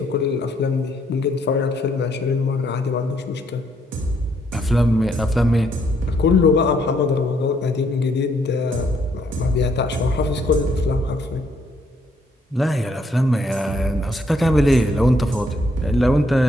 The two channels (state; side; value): normal; both; correlation 0.71